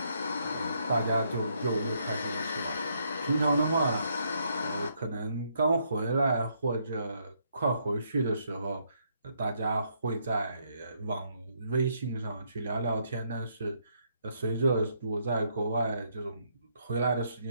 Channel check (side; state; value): both; inverted; correlation -0.73